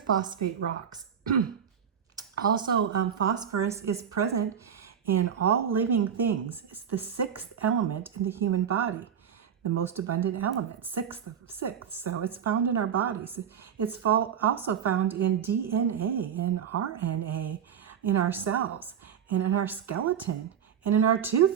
rocks. Also, phosphorus is present in all living things. It's the 6th element in the human body, the most abundant element, 6th of 6th. So it's found in our bodies. It's also found in DNA, in RNA, in our cells, and in our skeleton, and in our tooth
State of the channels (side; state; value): left; quieter; 8.2 dB